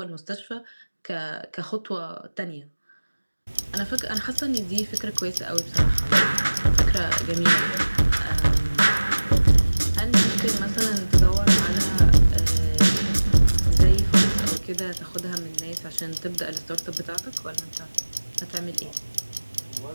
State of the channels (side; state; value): both; inverted; correlation -1.00